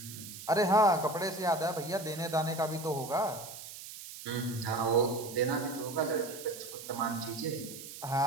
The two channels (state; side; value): noise; right; hiss, 12 dB below the sound